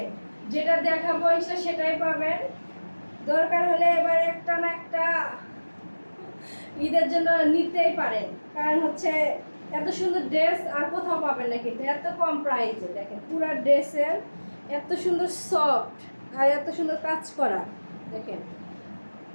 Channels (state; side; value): inverted; both; correlation -1.00